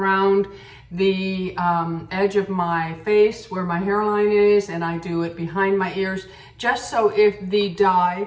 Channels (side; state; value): both; identical; correlation 1.00